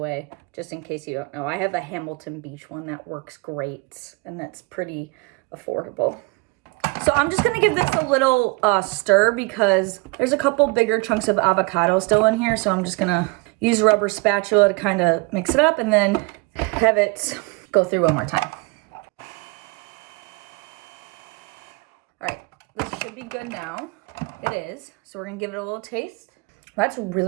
just in case you don't know. I have a Hamilton Beach one that works great, and that's pretty affordable. So I'm just gonna give this a little stir because there's a couple bigger chunks of avocado still in here. So I'm just gonna use a rubber spatula to kind of mix it up and then have it go through one more time. All right, this should be good now. It is. So we're gonna give it a little taste. That's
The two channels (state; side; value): quieter; left; 27.2 dB